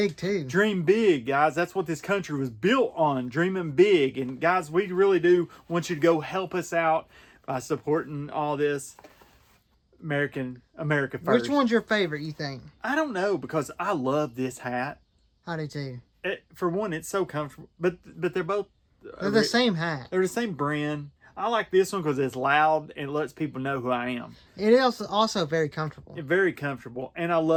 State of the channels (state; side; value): identical; both; correlation 1.00